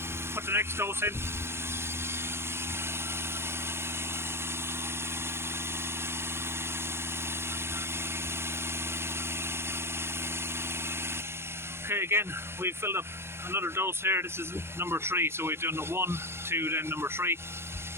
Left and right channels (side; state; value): left; late; 0.12 ms